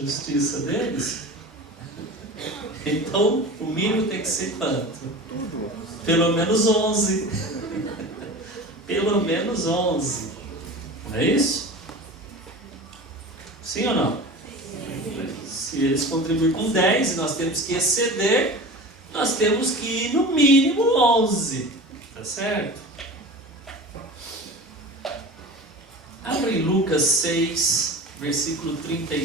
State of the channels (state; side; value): normal; both; correlation 0.34